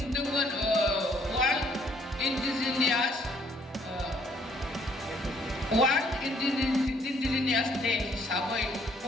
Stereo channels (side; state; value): both; normal; correlation 0.64